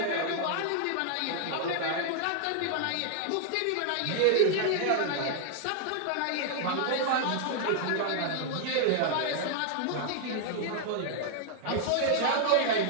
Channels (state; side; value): different; both; correlation 0.00